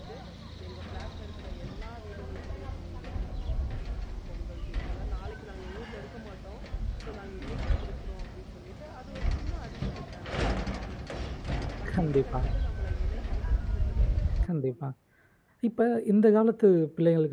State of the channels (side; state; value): both; identical; correlation 1.00